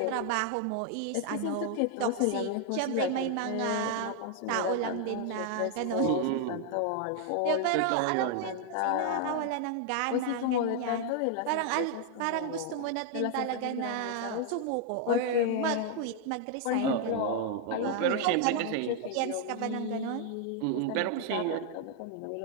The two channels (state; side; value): different; both; correlation 0.00